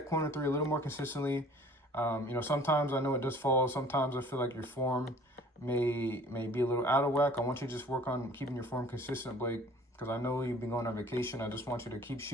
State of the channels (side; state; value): both; normal; correlation 0.51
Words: corner 3 a little more consistently. Sometimes I know it does fall. Sometimes I feel like your form may be a little out of whack. I want you to just work on keeping your form consistent, Blake, because I know you've been going on vacation. I just want you to keep